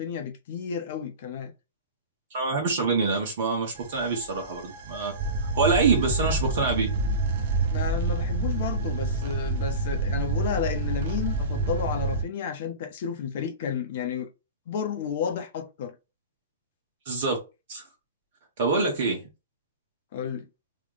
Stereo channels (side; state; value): both; inverted; correlation -0.31